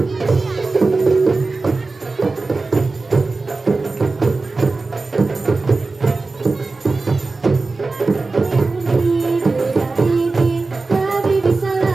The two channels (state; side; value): quieter; left; 3.7 dB